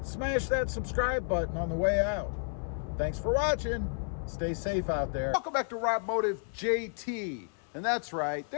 smash that subscribe button on the way out. Thanks for watching. Stay safe out there. Welcome back to Robmotive JT. And that's right,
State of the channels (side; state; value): right; silent; 56 dB below the other